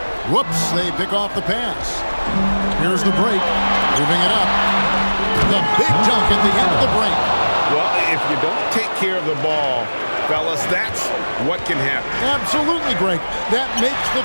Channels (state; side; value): inverted; both; correlation -1.00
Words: Whoops, they pick off the pass. Here's the break. Moving it up. The big dunk at the end of the break. Well, if you don't take care of the ball, fellas, that's what can happen. Absolutely, Greg. That makes